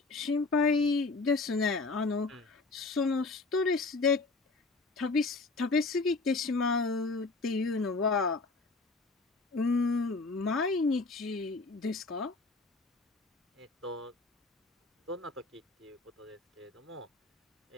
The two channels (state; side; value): quieter; right; 3.6 dB